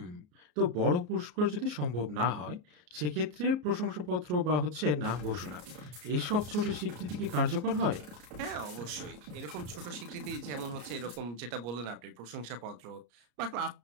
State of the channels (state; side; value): late; left; 34 ms